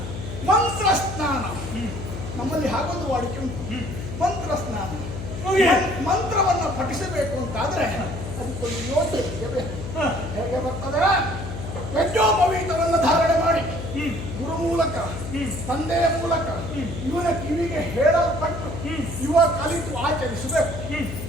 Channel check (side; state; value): left; noise; hum, 8 dB below the sound